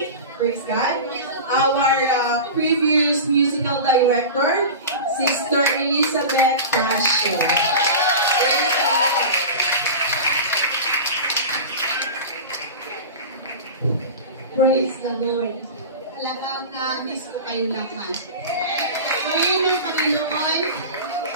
Praise God. Our previous musical director, Sister Elizabeth Casio. Praise the Lord. Praise the Lord. Talagang na-miss ko kayo lahat. Ngayon ng Panginoon,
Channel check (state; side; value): inverted; both; correlation -0.30